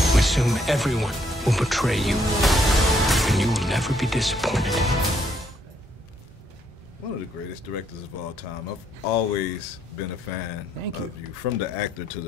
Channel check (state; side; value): normal; both; correlation 0.71